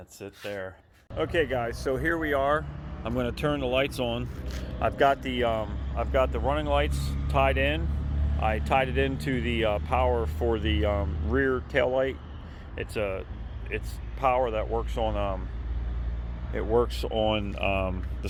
it there. Okay guys, so here we are. I'm going to turn the lights on. I've got the running lights tied in. I tied it into the power for the rear tail light. It's power that works on the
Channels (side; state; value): both; identical; correlation 1.00